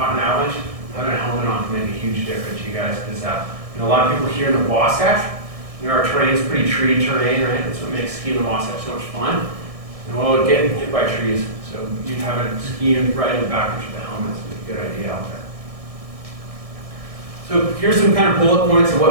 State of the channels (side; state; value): left; late; 1.6 ms